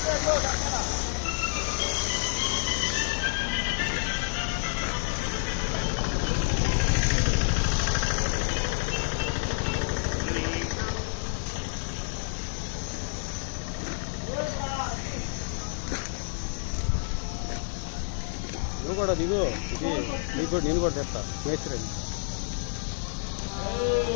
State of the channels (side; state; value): right; silent; digital silence